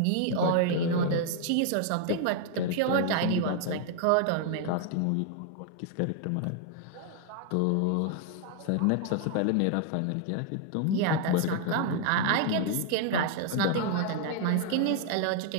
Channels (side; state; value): both; different; correlation 0.00